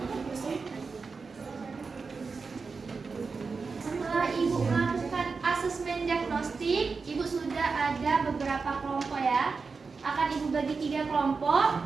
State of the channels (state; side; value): quieter; left; 4.7 dB